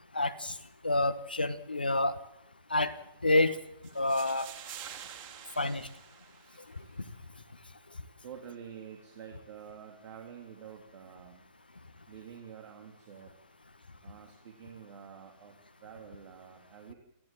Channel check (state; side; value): inverted; both; correlation -0.75